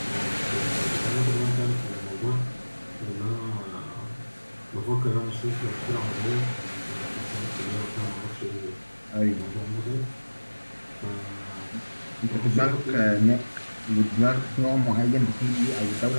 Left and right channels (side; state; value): both; inverted; correlation -1.00